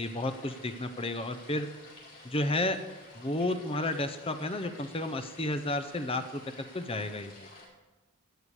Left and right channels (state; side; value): normal; both; correlation 0.40